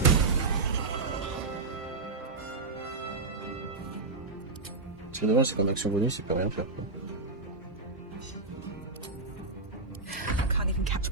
C'est dommage, c'est comme action bonus, il peut rien faire, quoi.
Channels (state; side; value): quieter; left; 3.6 dB